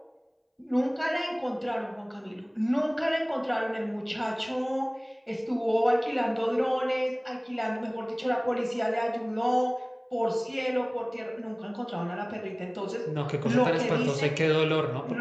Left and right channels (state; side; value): identical; both; correlation 1.00